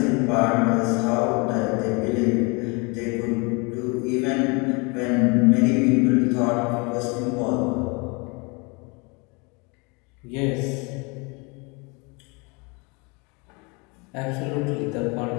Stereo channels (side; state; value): right; quieter; 29.9 dB